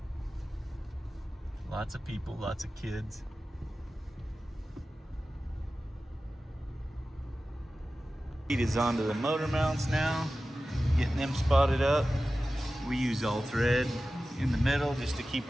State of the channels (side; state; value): both; normal; correlation 0.95